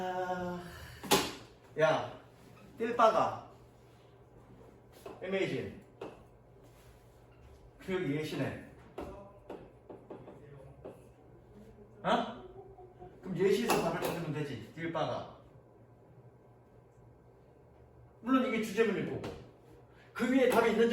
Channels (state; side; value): identical; both; correlation 1.00